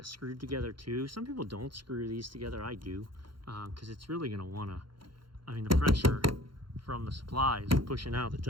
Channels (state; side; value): late; left; 0.73 ms